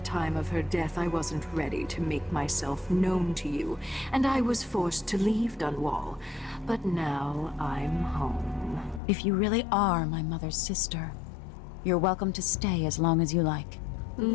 of her death, I wasn't ready to make myself known to you, and I was forced to leave Dunwall. But now I'm home. If you really are my mother's sister, you're welcome to stay as long as you like.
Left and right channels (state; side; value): drops out; right; at 9.0 s